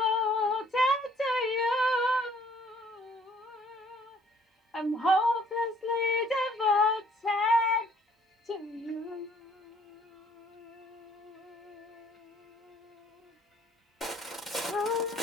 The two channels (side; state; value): both; normal; correlation 0.60